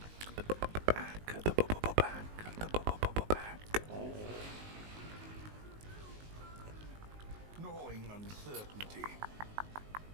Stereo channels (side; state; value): left; late; 19 ms